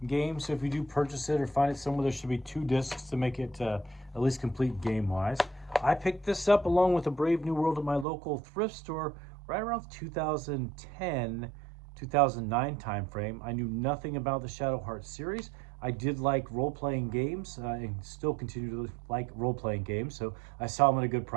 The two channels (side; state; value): left; drops out; at 8.1 s